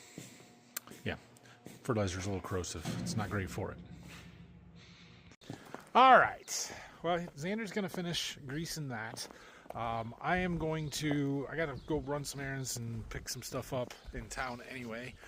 yeah, fertilizer's a little corrosive. It's not great for it. All right, well, Xander's gonna finish greasing that. I gotta go run some errands and pick some stuff up in town anyway,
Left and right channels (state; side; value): identical; both; correlation 1.00